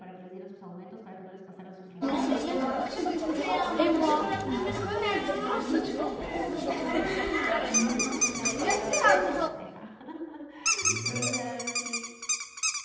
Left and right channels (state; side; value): identical; both; correlation 1.00